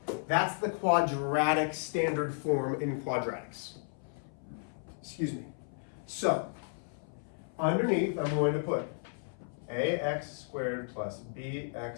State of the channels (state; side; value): silent; right; 55 dB below the other